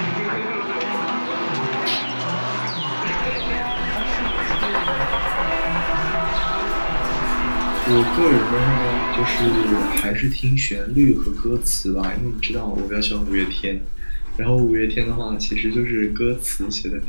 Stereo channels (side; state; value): both; inverted; correlation -1.00